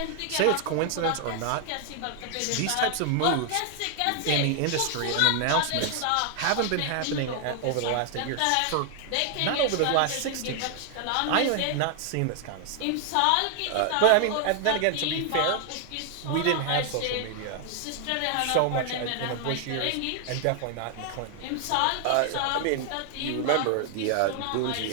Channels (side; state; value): both; different; correlation 0.00